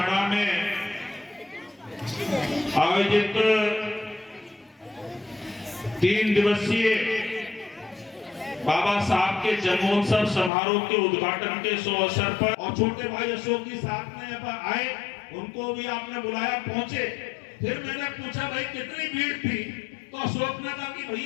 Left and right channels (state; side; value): drops out; right; at 10.5 s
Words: में आयोजित 3 दिवसीय बाबा साहब के जन्मोत्सव समारोह के उद्घाटन के शुभ अवसर पर और छोटे भाई अशोक जी साथ में आए, उनको भी आपने बुलाया, पहुंचे। फिर मैंने पूछा भाई कितनी भीड़ थी, तो अशोक ने कहा कि